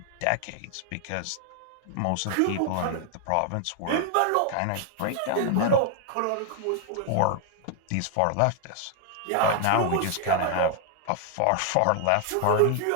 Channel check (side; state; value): both; different; correlation 0.00